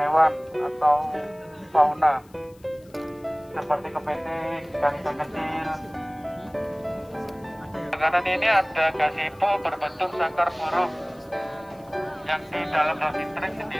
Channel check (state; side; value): noise; left; hiss, 30 dB below the sound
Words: hewan atau fauna seperti kepiting, ikan-ikan kecil. Di kanan ini ada gazebo berbentuk sangkar burung, yang di dalam Dolphin Track